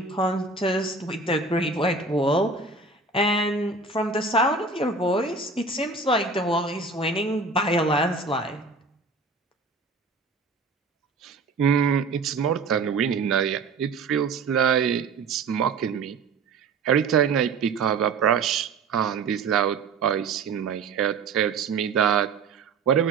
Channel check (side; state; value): left; quieter; 4.2 dB